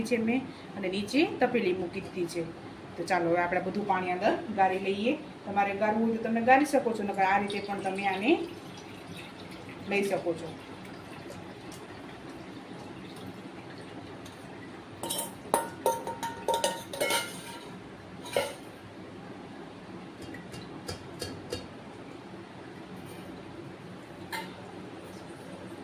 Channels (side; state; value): both; identical; correlation 1.00